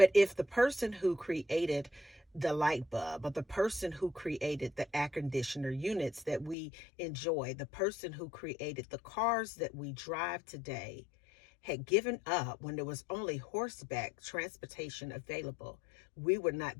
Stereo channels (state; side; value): drops out; right; at 6.6 s